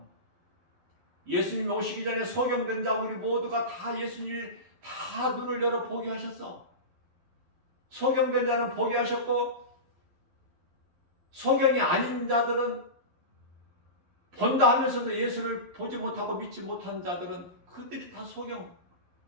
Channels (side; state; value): left; late; 11 ms